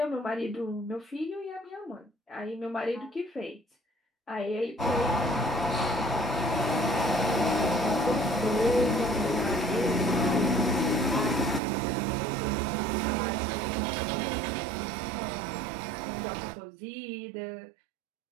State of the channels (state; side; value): drops out; left; at 11.6 s